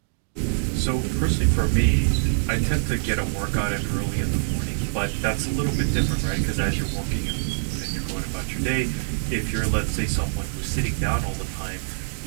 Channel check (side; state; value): left; silent; digital silence